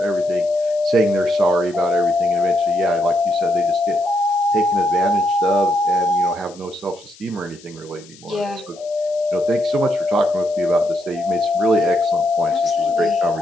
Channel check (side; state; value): left; noise; hiss, 23 dB below the sound